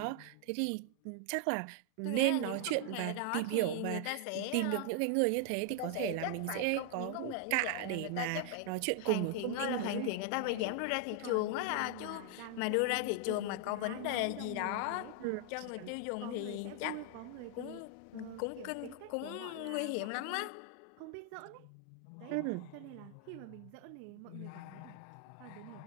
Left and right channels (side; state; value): both; different; correlation 0.00